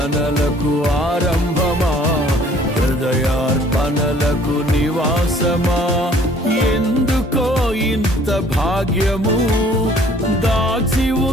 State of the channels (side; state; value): both; normal; correlation 0.56